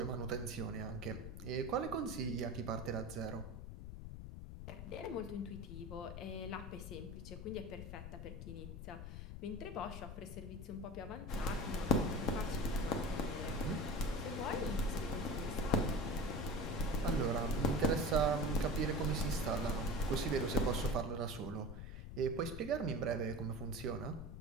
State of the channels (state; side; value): noise; left; rumble, 9 dB below the sound